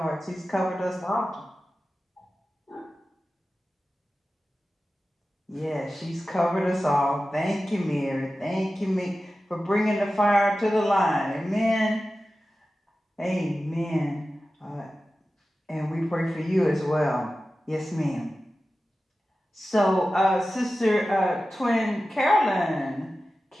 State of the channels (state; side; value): normal; both; correlation 0.94